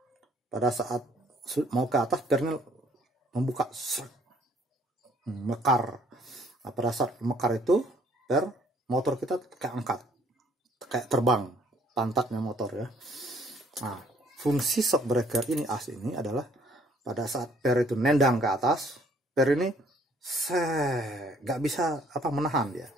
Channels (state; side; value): normal; both; correlation 0.61